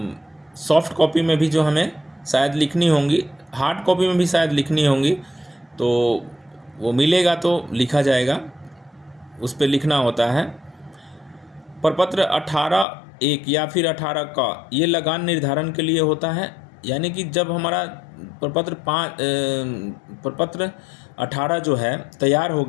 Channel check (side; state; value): right; drops out; at 12.9 s